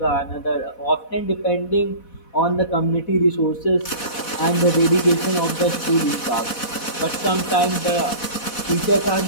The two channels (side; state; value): right; late; 4.1 ms